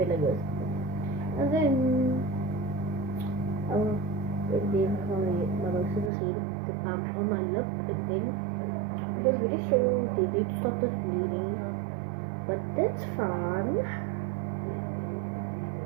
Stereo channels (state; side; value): drops out; left; at 6.1 s